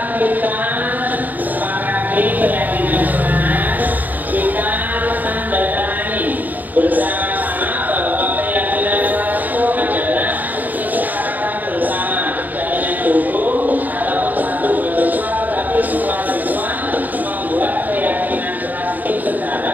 kita sepakati keyakinan keras, kita menandatangani bersama-sama bahwa keyakinan keras itu adalah kesepakatan bersama, tidak hanya guru ataupun satu mahasiswa, tetapi semua siswa membuat keyakinan keras itu secara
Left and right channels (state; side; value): late; left; 0.083 ms